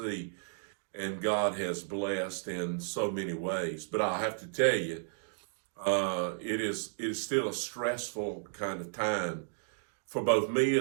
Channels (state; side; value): silent; left; digital silence